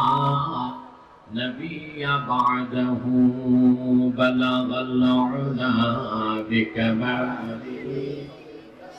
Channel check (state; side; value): identical; both; correlation 1.00